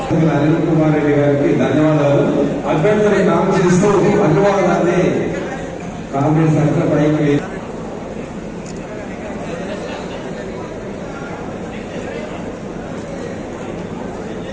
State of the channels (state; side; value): identical; both; correlation 1.00